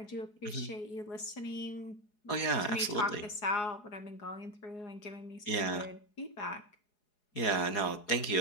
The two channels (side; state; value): right; late; 4.8 ms